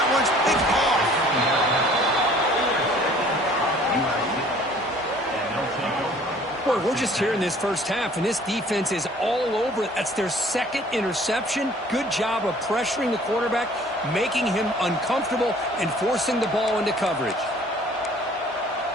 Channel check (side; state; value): both; normal; correlation 0.53